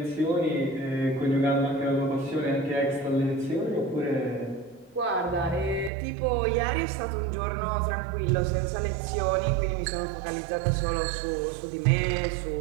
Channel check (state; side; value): drops out; left; at 5.9 s